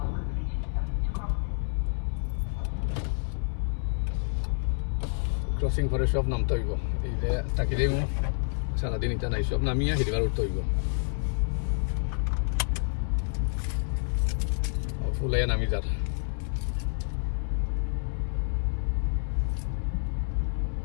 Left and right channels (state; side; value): silent; right; digital silence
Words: ক্রসিং করে সব নামতে হইব এই যে তাকি দেব সারাদিন এটা নাই সব নামিয়ে হিরবার উঠতে হইব ফুলাই নামি যার